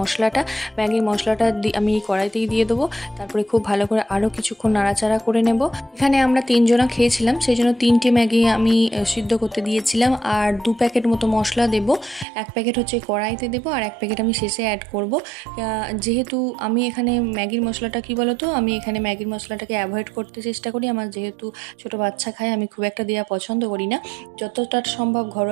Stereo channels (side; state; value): left; drops out; at 12.2 s